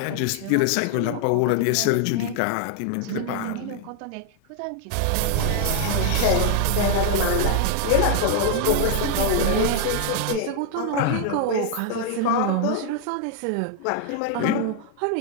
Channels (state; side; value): different; both; correlation 0.00